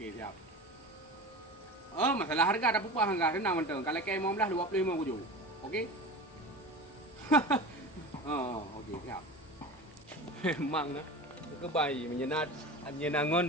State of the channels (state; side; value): normal; both; correlation 0.32